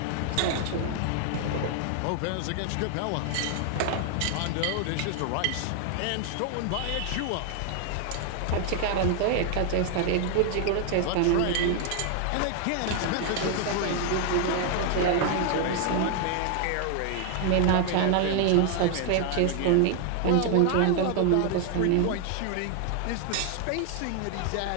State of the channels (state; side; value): different; both; correlation 0.00